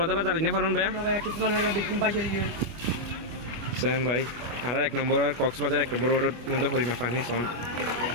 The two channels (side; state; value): left; late; 25 ms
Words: জানি না পারেন ভাইয়া ভাইয়া কিছু জানা না বিকিম বাইশে দিবে সেম ভাই আর ১ নম্বর আর কক্সবাজার ১ নম্বর রোডের মধ্যে পরিমা পানি সন